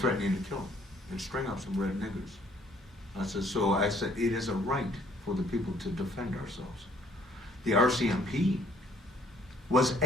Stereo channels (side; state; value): both; normal; correlation 0.62